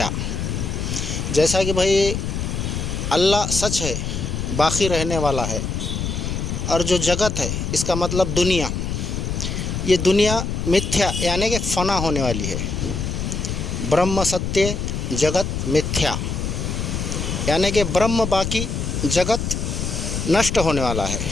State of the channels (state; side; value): noise; left; rumble, 3 dB below the sound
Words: جیسا کہ بھئی اللہ سچ ہے، باقی رہنے والا ہے، اور جو جگت ہے اس کا مطلب دنیا، یہ دنیا متھیا یعنی کہ فنا ہونے والی ہے۔ برہم ستیہ جگت متھیا یعنی کہ برہم باقی، جگت نشٹ ہونے والا ہے۔